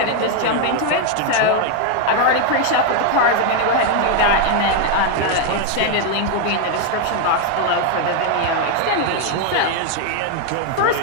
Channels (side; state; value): both; different; correlation 0.01